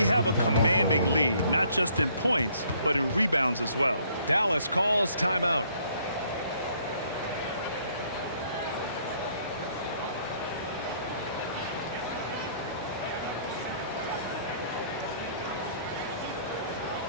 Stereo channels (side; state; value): both; inverted; correlation -0.63